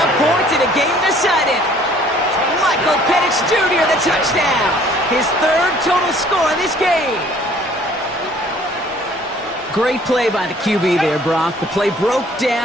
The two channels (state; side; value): normal; both; correlation 0.56